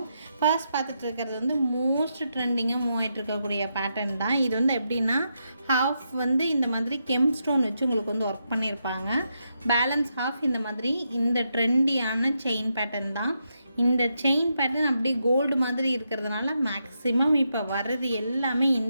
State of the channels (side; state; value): both; inverted; correlation -0.83